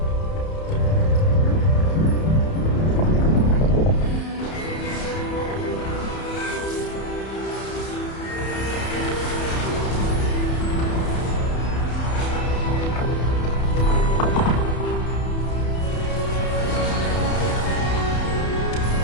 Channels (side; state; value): right; late; 31 ms